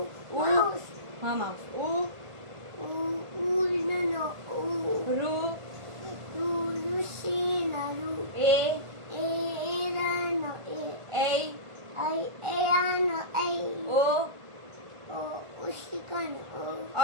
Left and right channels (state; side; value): late; left; 1.5 ms